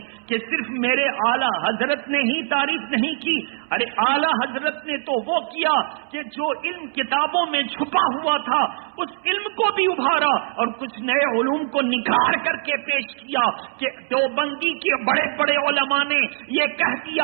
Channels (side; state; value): left; silent; 64 dB below the other